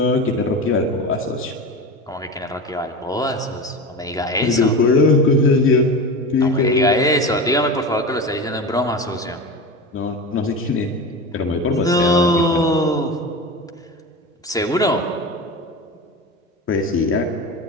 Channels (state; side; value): normal; both; correlation 0.27